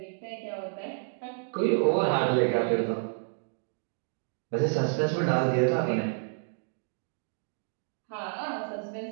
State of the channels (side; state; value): left; silent; digital silence